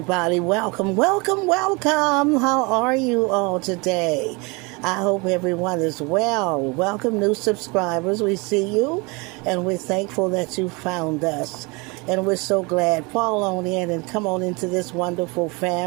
Welcome, welcome, welcome. How are you all today? I hope everyone is well. Welcome, new subscribers. We see you, and we're thankful that you found us. And we're so glad. Fall on in and come on into this wonderful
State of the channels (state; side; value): quieter; left; 27.8 dB